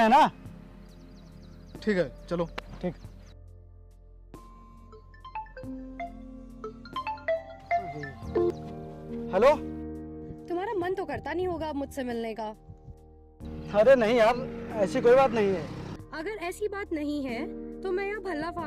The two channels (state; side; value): identical; both; correlation 1.00